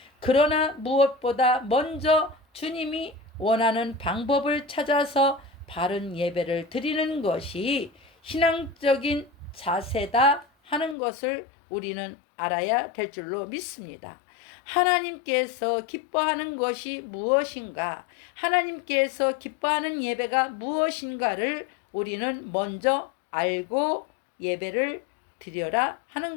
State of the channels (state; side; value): drops out; right; at 11.0 s